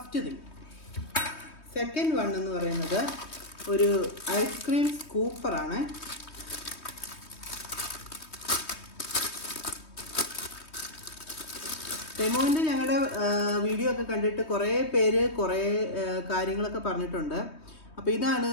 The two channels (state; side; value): late; right; 3.2 ms